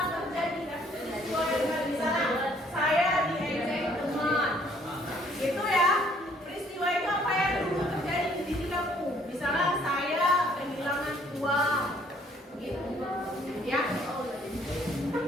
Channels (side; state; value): both; normal; correlation 0.62